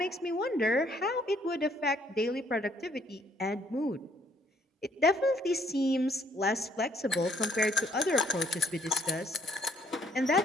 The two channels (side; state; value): both; normal; correlation 0.65